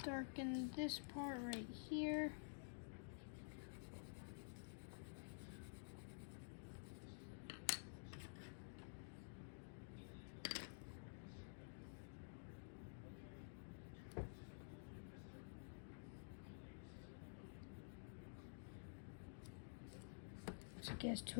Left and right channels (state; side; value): silent; right; digital silence